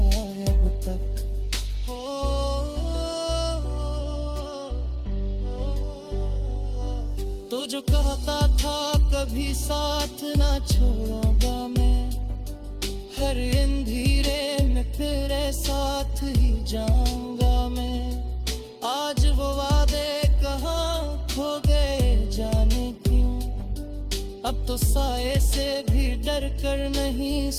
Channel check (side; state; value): both; identical; correlation 1.00